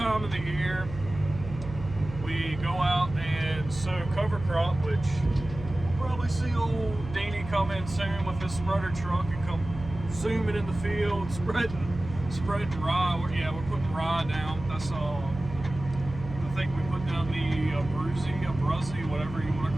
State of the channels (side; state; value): right; noise; hum, 11 dB below the sound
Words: of the year, we go out and sow cover crop, which you'll probably see old Deanie come in soon with his spreader truck and come zooming in the field, spreading rye. Yeah, we're putting rye down. That's I think we put down the abruzzi, whatever you want to